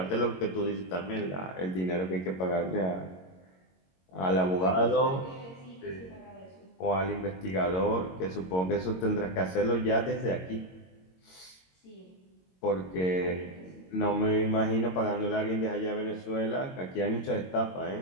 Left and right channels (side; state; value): right; late; 22 ms